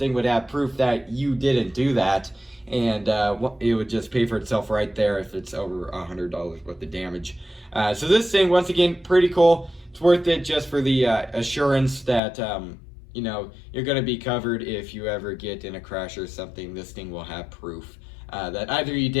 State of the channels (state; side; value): drops out; right; at 12.2 s